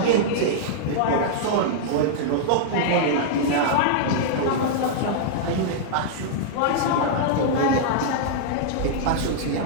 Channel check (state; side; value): different; both; correlation -0.02